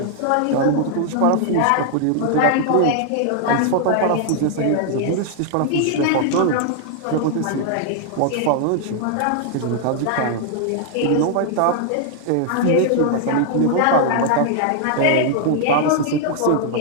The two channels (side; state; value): both; different; correlation -0.01